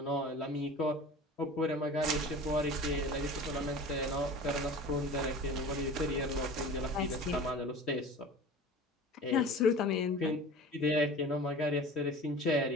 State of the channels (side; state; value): both; normal; correlation 0.38